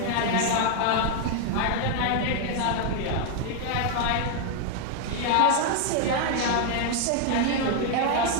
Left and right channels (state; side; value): different; both; correlation 0.01